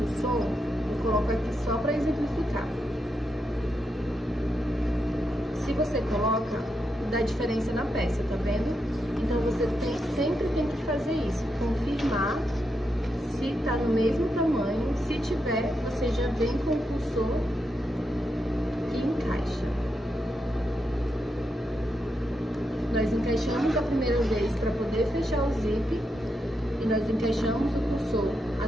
cursor, eu coloco aqui só pra exemplificar. Se você coloca, dá diferença na peça, tá vendo? Então você sempre tem que fazer isso, confirmar se tá no mesmo tamanho. Se tiver, você já vem com o cursor e encaixa. Nós encaixamos a primeira vez para poder fechar o zíper e nós encaixamos o cursor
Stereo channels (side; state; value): both; normal; correlation 0.84